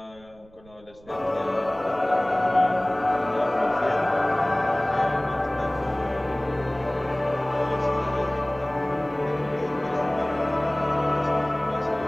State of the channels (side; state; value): right; noise; rumble, 26 dB below the sound